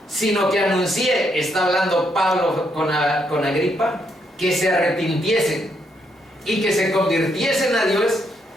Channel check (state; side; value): normal; both; correlation 0.76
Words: Sino que anuncié, está hablando Pablo con Agripa, que se arrepintiesen y que se convirtiesen a Dios